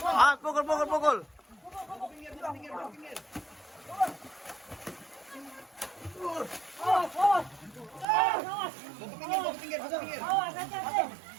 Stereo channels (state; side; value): drops out; left; at 8.1 s